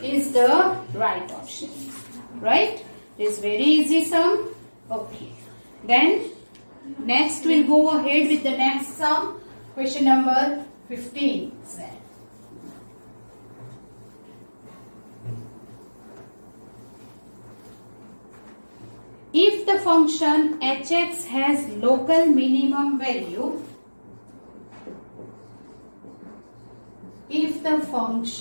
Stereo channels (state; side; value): inverted; both; correlation -1.00